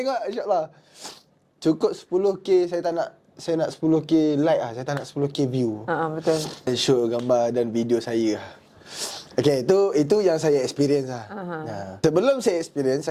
insyaAllah. Cukup 10K, saya nak 10K like lah. Saya tak nak 10K view. Betul. Show gambar dan video saya. Okey, itu yang saya experience lah. Sebelum saya experience,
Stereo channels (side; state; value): both; identical; correlation 1.00